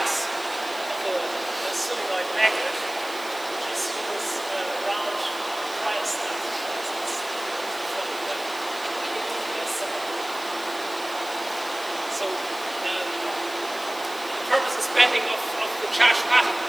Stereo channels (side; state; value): left; noise; hiss, 15 dB below the sound